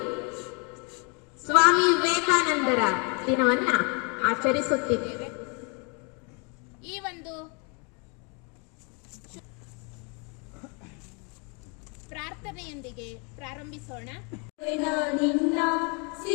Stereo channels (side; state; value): right; quieter; 34.4 dB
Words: ಸ್ವಾಮಿ ವಿವೇಕಾನಂದರ ದಿನವನ್ನ ಆಚರಿಸುತ್ತಿದ್ದೇವೆ. ಈ ಒಂದು ಪ್ರಾರ್ಥನೆಯೊಂದಿಗೆ ಪ್ರಾರಂಭಿಸೋಣ. ನಿನ್ನ